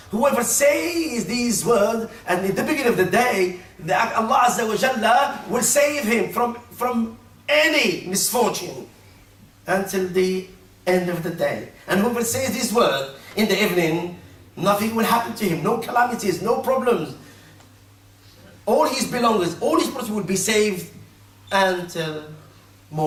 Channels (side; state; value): both; identical; correlation 1.00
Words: Whoever says these words, and at the beginning of the day, Allah Azza wa Jalla will save him from any misfortune until the end of the day. And whoever says this word in the evening, nothing will happen to him, no calamities, no problems. All his belongings, all his property will be saved until